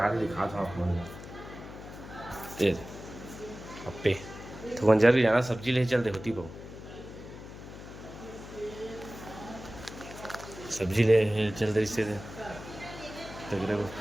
के दिखा था आप मन अप्पे तो मंजर भी जाना सब्जी ले चलते होती बहु सब्जी ले चलते इससे तगड़े वो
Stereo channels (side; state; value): left; noise; hum, 13 dB below the sound